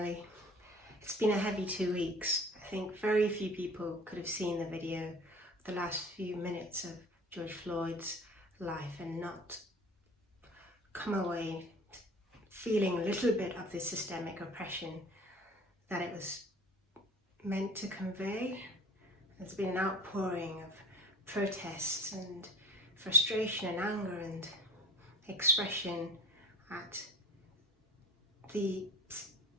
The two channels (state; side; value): normal; both; correlation 0.42